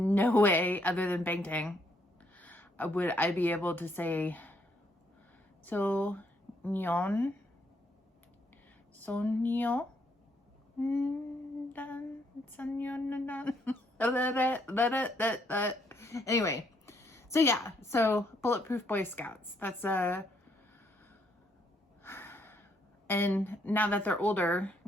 way other than Bangtan would I be able to say Sonyeondan. Anyway, so yeah, so bulletproof Boy Scouts. That's and now that they're older,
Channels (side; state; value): both; normal; correlation 0.72